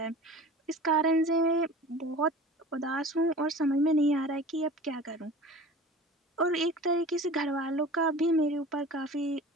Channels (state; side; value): normal; both; correlation 0.39